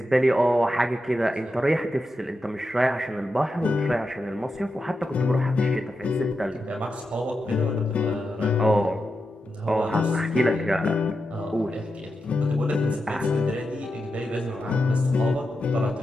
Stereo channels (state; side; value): normal; both; correlation 0.88